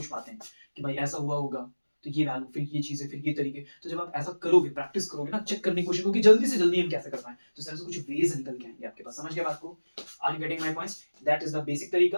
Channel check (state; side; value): inverted; both; correlation -1.00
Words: पाते हैं कि भाई ऐसा हुआ होगा, तो ये वैल्यू, फिर ये चीजें, फिर ये तरीके। तो जब आप ऐसा करोगे, प्रैक्टिस करोगे ना, चेक करने की कोशिश करोगे जल्दी से जल्दी हम कैसे कर पाए, तो सर से कुछ वेज निकल के आएंगे आपके पास। समझ गए बात को? Are you getting my points? That is the basic